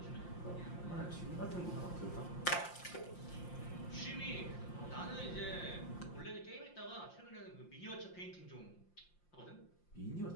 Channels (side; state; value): right; late; 5.7 ms